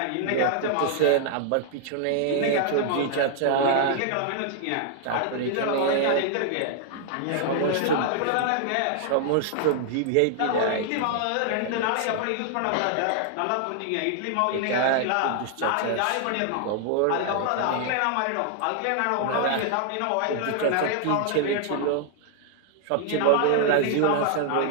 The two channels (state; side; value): different; both; correlation 0.00